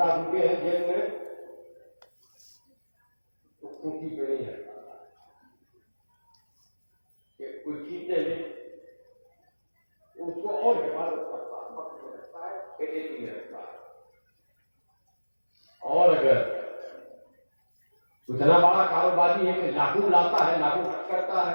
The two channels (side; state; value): both; inverted; correlation -1.00